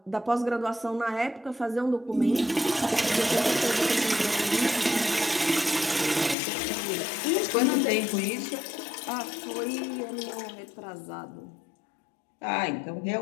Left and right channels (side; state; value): right; drops out; at 6.4 s